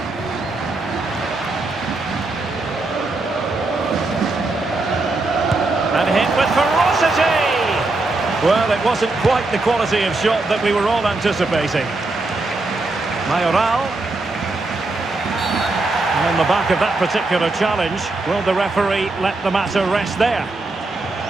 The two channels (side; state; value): left; quieter; 3.2 dB